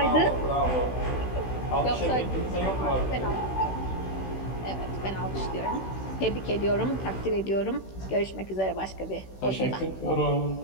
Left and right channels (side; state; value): right; late; 16 ms